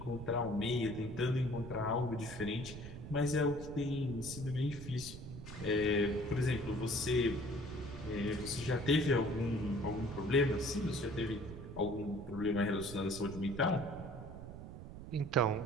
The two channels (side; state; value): right; noise; rumble, 11 dB below the sound